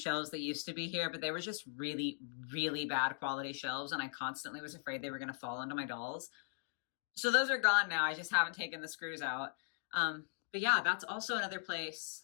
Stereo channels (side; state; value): right; silent; digital silence